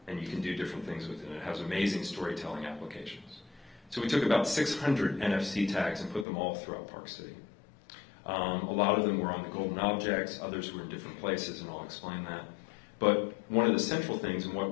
and you can do different things with it. It has amazing storytelling applications. So we took about 600 NFC tags and put them all throughout Park City. A lot of them were on the golden objects, others were in different places, and I'll explain that. But one of the central things, and what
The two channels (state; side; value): drops out; right; at 6.2 s